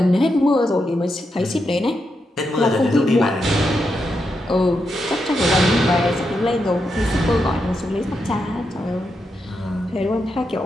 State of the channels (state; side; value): normal; both; correlation 0.84